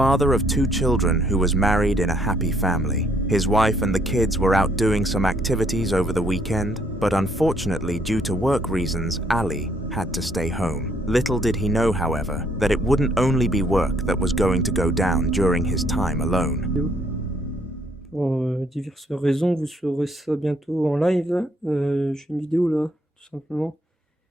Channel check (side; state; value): both; normal; correlation 0.67